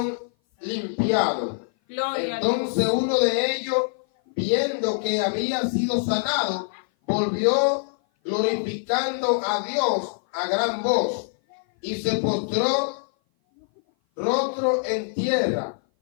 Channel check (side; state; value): right; silent; 57 dB below the other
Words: limpiados. Gloria a Entonces uno de ellos, viendo que había sido sanado, volvió glorificando a Dios a gran voz, y se postró rostro en tierra